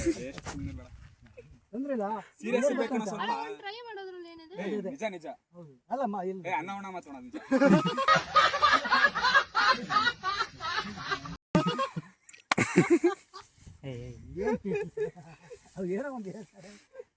ಟ್ರೈ ಮಾಡೋದ್ರಲ್ಲಿ ಏನಿದೆ? ನಿಜ ನಿಜ ಅಲ್ಲಮ್ಮ ಅನ್ನ ಉಣ ಮಾತೋಣ ನಿಜ. ಏನೋ ಒಂದು ಹೇಳ್ತಾರೆ.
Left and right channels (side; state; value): both; identical; correlation 1.00